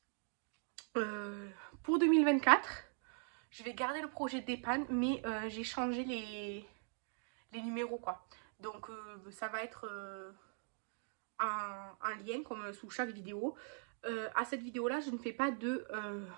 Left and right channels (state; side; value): silent; left; 50 dB below the other